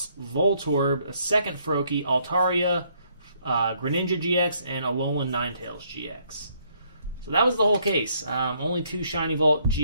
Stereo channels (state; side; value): inverted; both; correlation -0.69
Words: Voltorb, a second Froakie, Altaria, Greninja GX, and Alolan Ninetales GX. So that was the whole case. Only 2 Shiny Vault